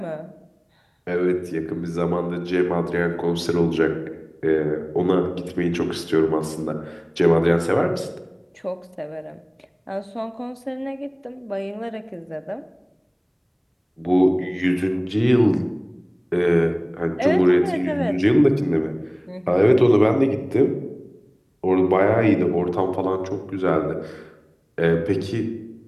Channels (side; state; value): both; identical; correlation 1.00